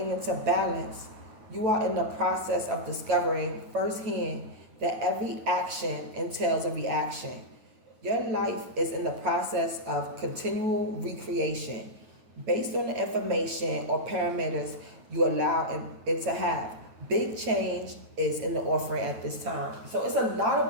into balance, you are in the process of discovering firsthand that every action entails a reaction. Your life is in the process of continual recreation based on the information or parameters you allow it to have. Big change is in the offering at this time. So it's a lot of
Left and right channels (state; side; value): late; left; 9.3 ms